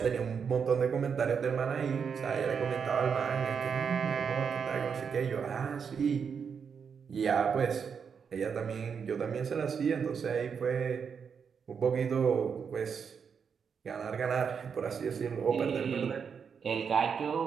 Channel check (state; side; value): quieter; left; 6.5 dB